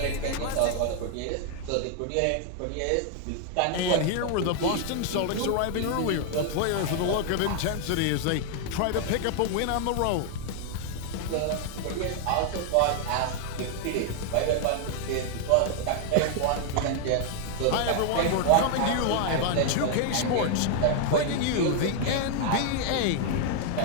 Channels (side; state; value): both; different; correlation 0.00